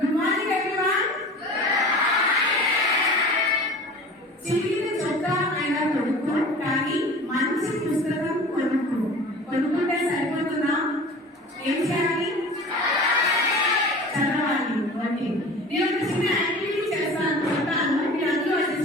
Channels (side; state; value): both; normal; correlation 0.39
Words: morning everyone. చిన్న చొక్కా అయినా కొనుక్కో, కానీ మంచి పుస్తకం కొనుక్కుంటే సరిపోతుందా? ఏం చేయాలి? చదవాలి. ఓకే, నేను ఒక చిన్న యాక్టివిటీ చేస్తాను, మీరు అందరూ అది